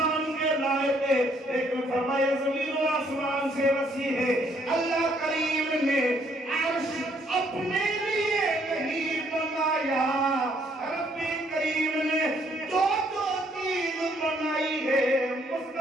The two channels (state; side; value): normal; both; correlation 0.67